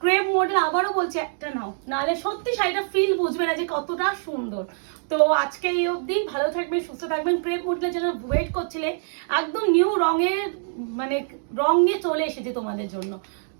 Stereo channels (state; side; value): silent; left; digital silence